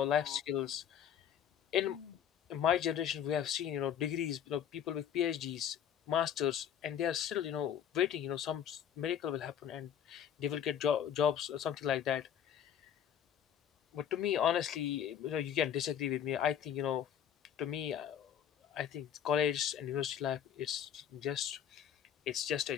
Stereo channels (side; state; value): right; quieter; 9.3 dB